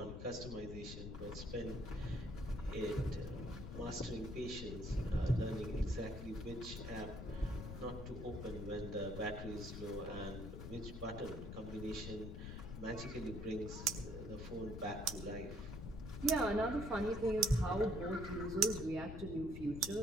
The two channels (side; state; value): left; noise; rumble, 7 dB below the sound